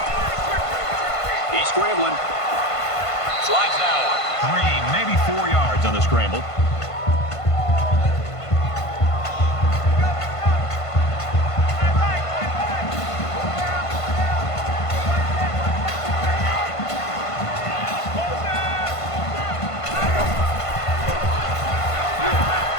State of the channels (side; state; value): right; late; 1.5 ms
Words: He's scrambling. Slides down. 3, maybe 4 yards on the scramble.